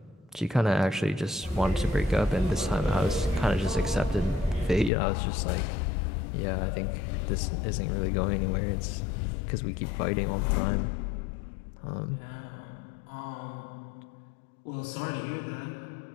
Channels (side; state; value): right; drops out; at 4.9 s